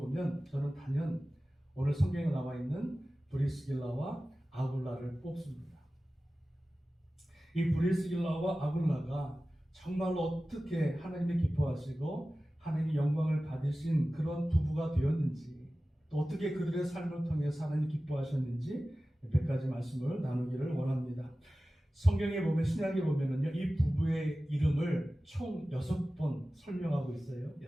저는 단연 오늘 성경에 나와 있는 브리스길라와 아굴라를 뽑습니다. 이 브리스길라와 아굴라가 정말로 어떻게 하나님이 기뻐하시고 하나님이 영광을 받으신 그런 부부가 되었는지 또 어떻게 그들의 삶을 통해서 하나님이 기뻐하셨는지 몇 가지 말씀을 나누기를 원합니다. 성경에 보면 신약에 보면은요 이 부부의 이름을 총 6번 설명하고 있어요.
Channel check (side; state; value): both; normal; correlation 0.96